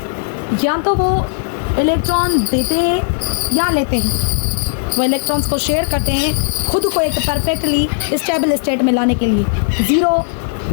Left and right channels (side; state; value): right; silent; digital silence